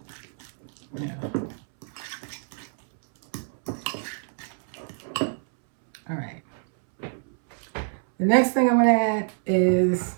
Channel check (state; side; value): silent; left; 61 dB below the other